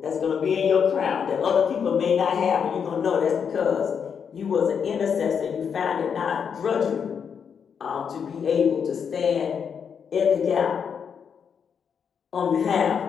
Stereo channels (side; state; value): right; quieter; 7.0 dB